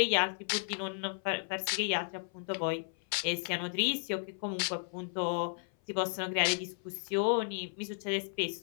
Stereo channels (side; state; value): right; silent; 55 dB below the other